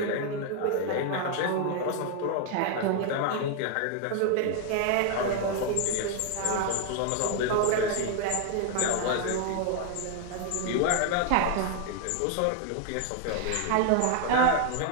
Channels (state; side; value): different; both; correlation 0.00